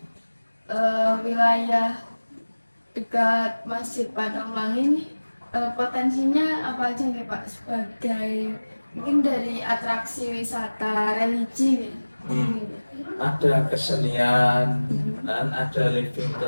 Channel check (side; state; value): both; inverted; correlation -1.00